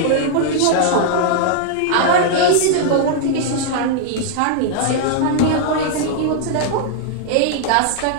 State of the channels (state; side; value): different; both; correlation -0.01